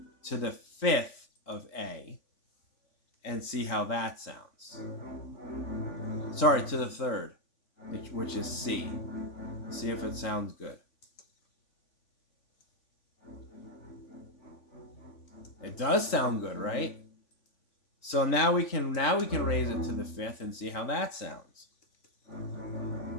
to the fifth of A. and see how that sounds. Sorry, to the third, which is C. See if it sounds good. It does sound good, right? So now we can raise it to the fifth and see how that sounds.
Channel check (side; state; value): right; late; 3.5 ms